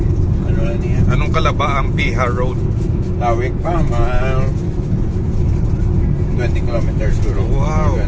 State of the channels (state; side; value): identical; both; correlation 1.00